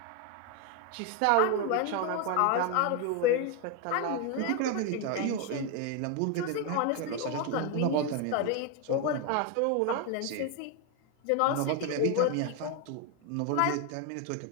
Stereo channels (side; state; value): both; different; correlation 0.01